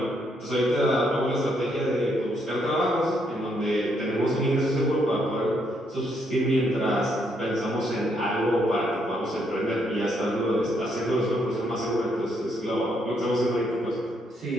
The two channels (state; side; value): normal; both; correlation 0.74